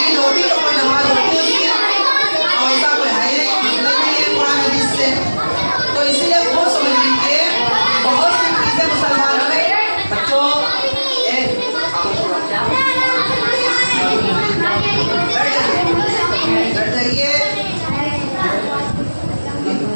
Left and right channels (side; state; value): both; inverted; correlation -1.00